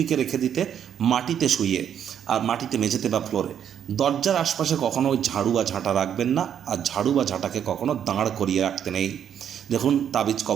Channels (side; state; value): left; quieter; 9.0 dB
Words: রেখে দিতে, মাটিতে শুইয়ে, আর মাটিতে মেঝেতে বা ফ্লোরে। দরজার আশপাশে কখনো ঝাড়ু বা ঝাঁটা রাখবেন না, আর ঝাড়ু বা ঝাঁটাকে কখনো দাঁড় করিয়ে রাখতে নেই। দেখুন তাবিজ